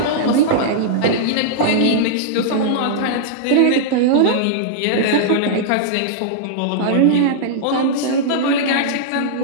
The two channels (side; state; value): both; different; correlation -0.02